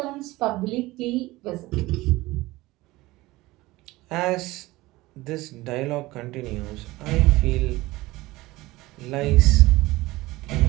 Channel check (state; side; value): quieter; left; 19.4 dB